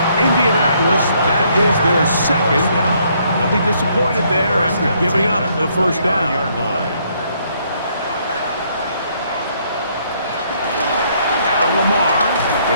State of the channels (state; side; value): inverted; both; correlation -0.69